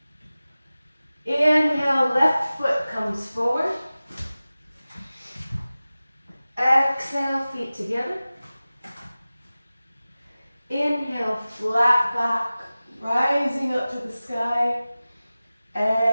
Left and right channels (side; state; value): both; inverted; correlation -0.96